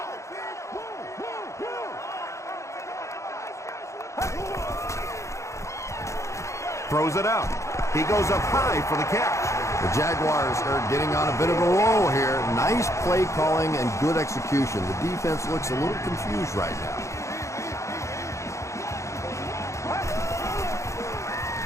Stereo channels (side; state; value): right; late; 0.14 ms